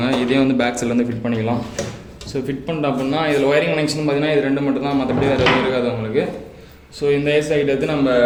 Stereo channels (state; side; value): identical; both; correlation 1.00